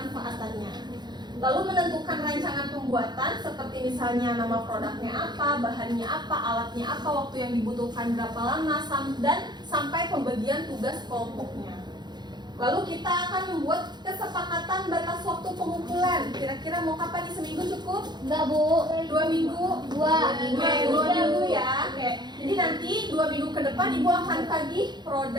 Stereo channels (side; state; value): left; late; 0.21 ms